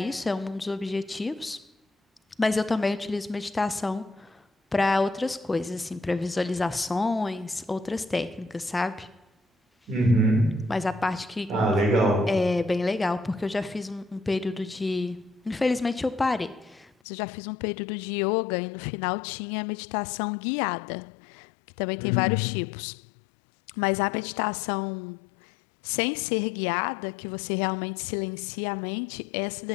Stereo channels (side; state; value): right; drops out; at 16.9 s